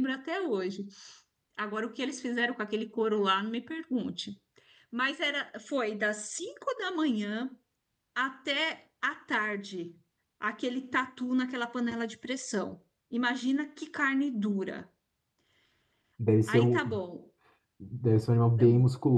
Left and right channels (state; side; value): identical; both; correlation 1.00